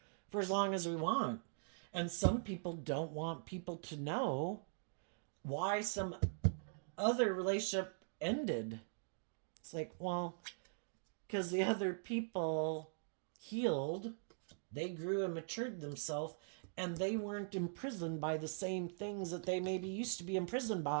for as long as we want. And some people don't want people to know why some other relationship ended. It's like, well, because the other people healed, they grew and matured themselves, and they weren't imprisoned by the same things that they maybe used to be imprisoned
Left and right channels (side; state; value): left; silent; digital silence